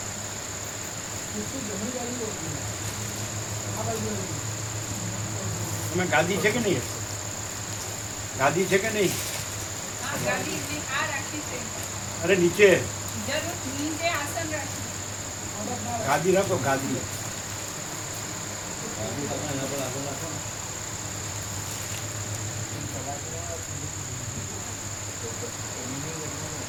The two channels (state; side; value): identical; both; correlation 1.00